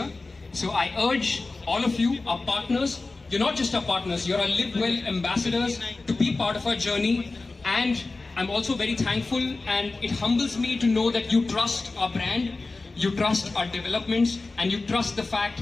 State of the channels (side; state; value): right; quieter; 3.5 dB